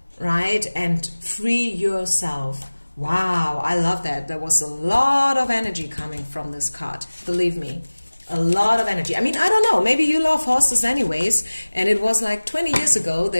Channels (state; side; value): inverted; both; correlation -1.00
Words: right? And free yourself. Wow, I love that. There was a lot of energy coming from this card. Believe me. A lot of energy. I mean, I don't know. Maybe you love horses anyways. And it was like 20 years ago